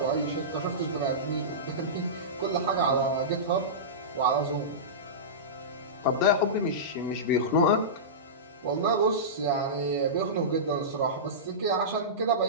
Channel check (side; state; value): both; normal; correlation -0.18